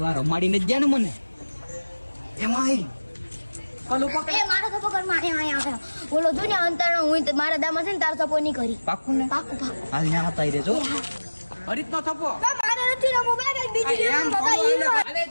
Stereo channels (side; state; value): both; inverted; correlation -1.00